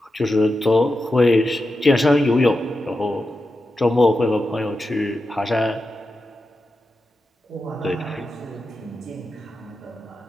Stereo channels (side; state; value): both; normal; correlation 0.90